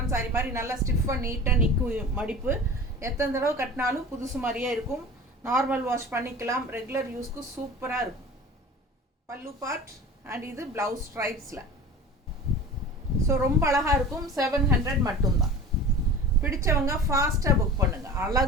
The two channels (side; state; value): both; normal; correlation 0.38